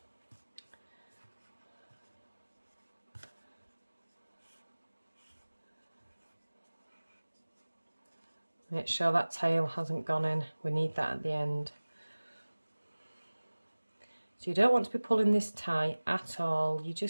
Make sure that tail hasn't gone in, we need that at the end. So you don't want to be pulling this tight at all, you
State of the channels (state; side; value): inverted; both; correlation -1.00